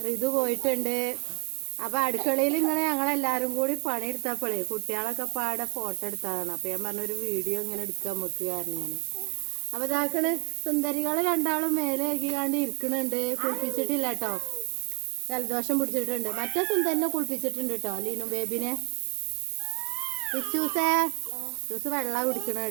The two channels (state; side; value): quieter; left; 37.4 dB